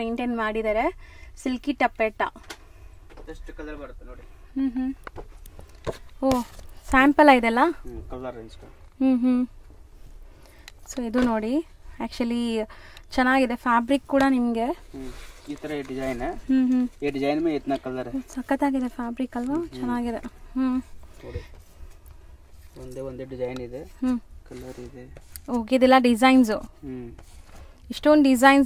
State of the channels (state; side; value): identical; both; correlation 1.00